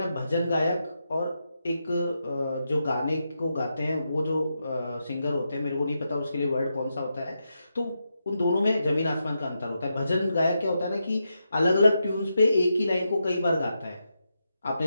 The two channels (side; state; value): both; inverted; correlation -0.85